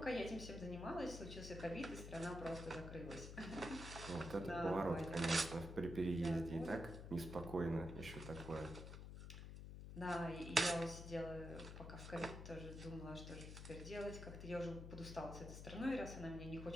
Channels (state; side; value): noise; left; hum, 9 dB below the sound